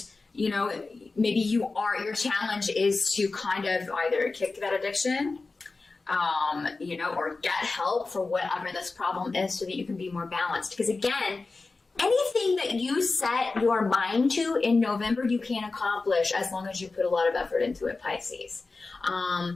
maybe your challenge is to kind of either kick that addiction, or get help for whatever this problem is so that you can be more balanced. Because again, anything that you set your mind to in November, you can accomplish as long as you put a lot of effort into it, Pisces.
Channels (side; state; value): right; quieter; 3.8 dB